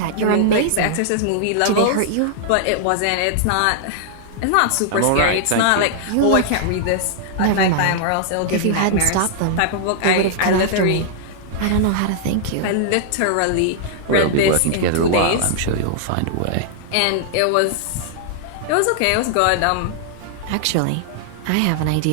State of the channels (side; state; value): both; different; correlation -0.01